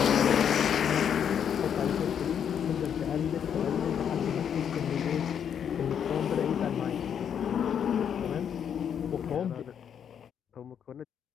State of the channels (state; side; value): quieter; right; 8.3 dB